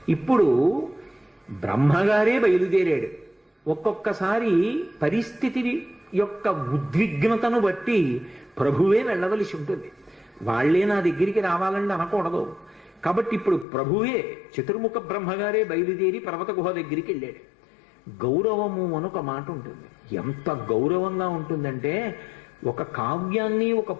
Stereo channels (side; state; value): right; drops out; at 13.7 s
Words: ఇప్పుడు బ్రహ్మగారే బయలుదేరాడు. ఒక్కొక్కసారి పరిస్థితి యొక్క ఉద్విగ్నతను బట్టి ప్రభువే వెళ్ళవలసి ఉంటుంది. వాళ్లే నా దగ్గరికి రావాలని అనకూడదు. కాబట్టి ఇప్పుడు ప్రభువే చతుర్ముఖ బ్రహ్మగారే బయలుదేరి పర్వత గుహ దగ్గరికి వెళ్ళాడు. గౌరవము అని ఒక మాట ఉంటుంది. ఎంత గౌరవంగా ఉంటుందంటే ఒక కావ్యాన్ని ఒక